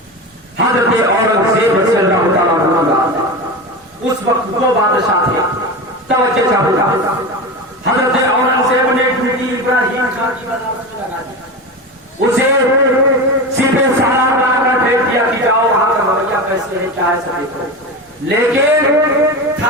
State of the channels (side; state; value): both; normal; correlation 0.24